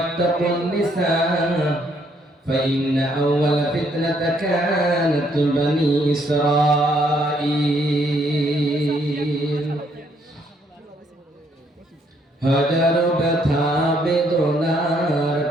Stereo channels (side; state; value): both; normal; correlation 0.69